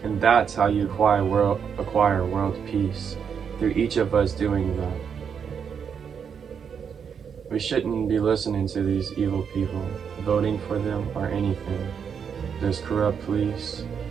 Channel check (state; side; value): quieter; left; 7.1 dB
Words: And that's how you acquire world peace, through each of us doing that. We shouldn't be listening to these evil people, voting for them or anything. There's corrupt police,